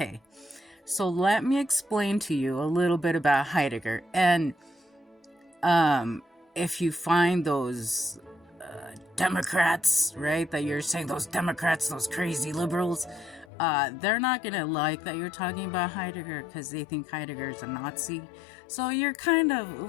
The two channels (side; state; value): right; drops out; at 13.5 s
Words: so let me explain to you a little bit about Heidegger. And if you find those Democrats, right, that you're saying, those Democrats, those crazy liberals, they're not gonna like that you're talking about Heidegger because they think Heidegger's a Nazi. So you're kind of,